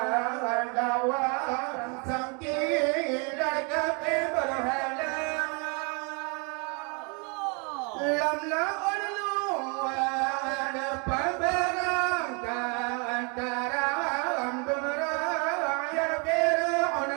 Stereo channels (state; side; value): quieter; left; 33.9 dB